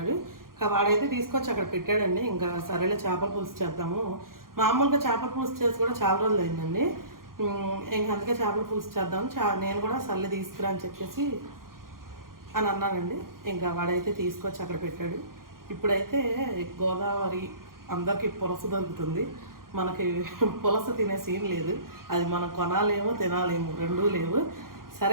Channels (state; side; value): late; left; 0.91 ms